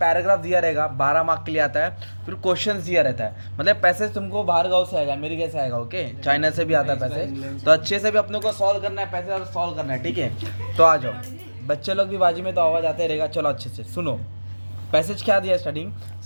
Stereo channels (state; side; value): inverted; both; correlation -1.00